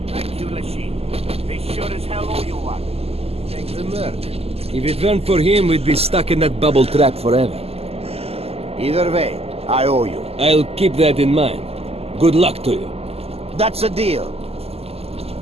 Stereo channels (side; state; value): left; late; 0.29 ms